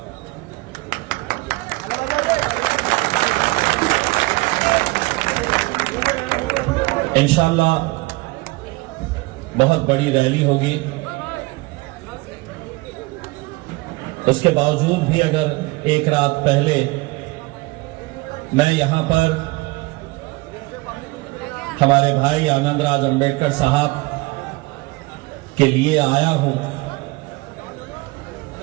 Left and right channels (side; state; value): left; quieter; 23.2 dB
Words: इंशाअल्लाह बहुत बड़ी रैली होगी। उसके बावजूद भी अगर एक रात पहले मैं यहां पर हमारे भाई आनंदराज अंबेडकर साहब के लिए आया हूं,